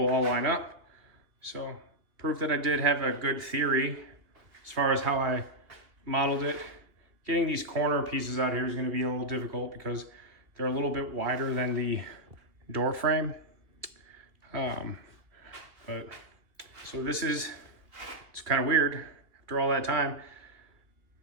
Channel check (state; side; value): late; left; 2.7 ms